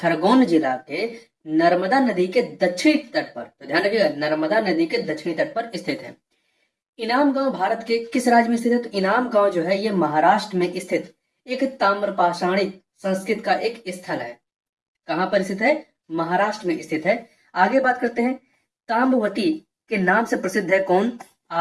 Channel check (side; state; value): both; identical; correlation 1.00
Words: जिला के नर्मदा नदी के दक्षिणी तट पर, तो ध्यान रखिएगा, नर्मदा नदी के दक्षिणी तट पर स्थित है। इनाम गांव भारत के किस राज्य में स्थित है? तो इनाम गांव जो है ये महाराष्ट्र में स्थित एक ताम्रपाषाणिक संस्कृत का एक स्थल है। कहां पर स्थित है? महाराष्ट्र में स्थित है। आगे बात करते हैं, ताम्रवती के नाम से प्रसिद्ध है कौन?